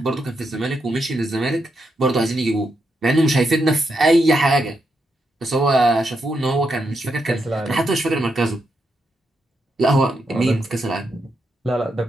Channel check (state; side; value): normal; both; correlation 0.82